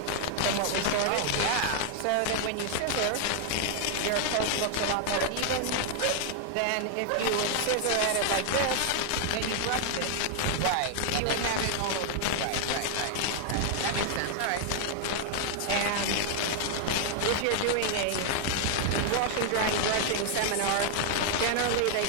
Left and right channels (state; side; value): different; both; correlation 0.00